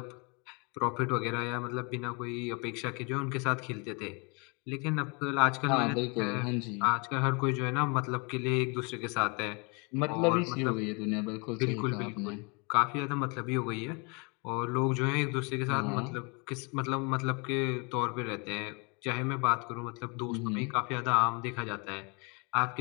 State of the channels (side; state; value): right; quieter; 31.9 dB